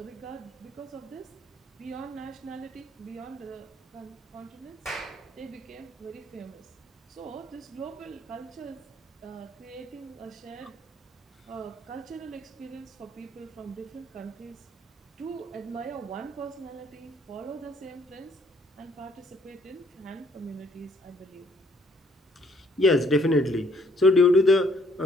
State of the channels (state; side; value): normal; both; correlation 0.65